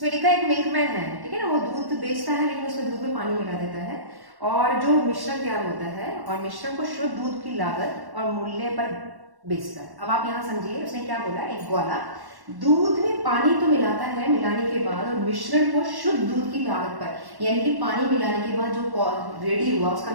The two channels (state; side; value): late; left; 1.1 ms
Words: लिखा है एक मिल्कमैन है, ठीक है ना, वो दूध बेचता है लेकिन उसमें दूध में पानी मिला देता है और जो मिश्रण तैयार होता है और मिश्रण को शुद्ध दूध की लागत और मूल्य पर बेचता है। अब आप यहाँ समझिए उसने क्या बोला, एक ग्वाला दूध में पानी तो मिलाता है मिलाने के बाद और मिश्रण को शुद्ध दूध की लागत पर, यानी कि पानी मिलाने के बाद जो रेडी हुआ उसका